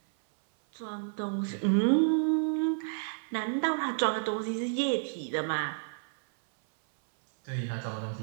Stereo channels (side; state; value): left; silent; 58 dB below the other